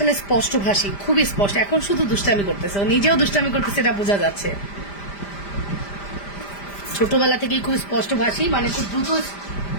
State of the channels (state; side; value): late; right; 5.0 ms